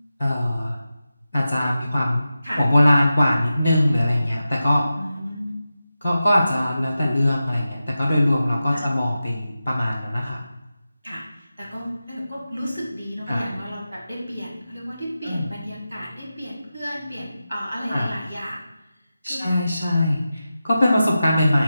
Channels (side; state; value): both; inverted; correlation -0.93